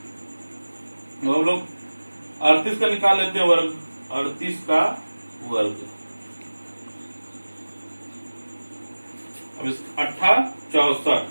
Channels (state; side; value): inverted; both; correlation -1.00